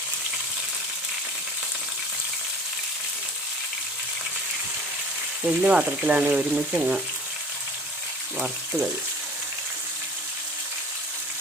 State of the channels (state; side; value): normal; both; correlation 0.43